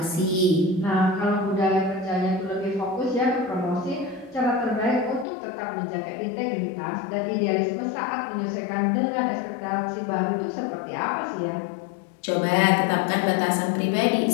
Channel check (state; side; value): drops out; right; at 5.2 s